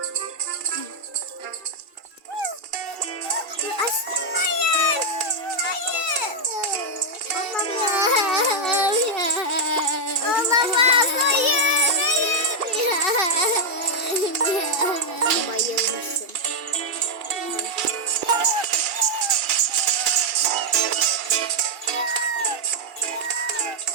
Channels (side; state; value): left; late; 2.3 ms